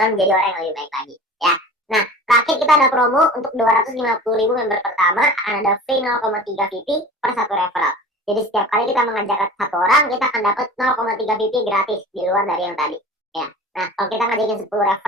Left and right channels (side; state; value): both; normal; correlation 0.38